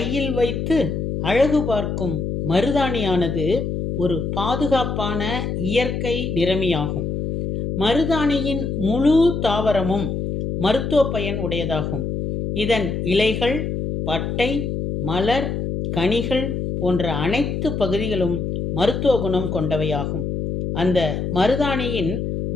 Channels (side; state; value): left; noise; hum, 2 dB below the sound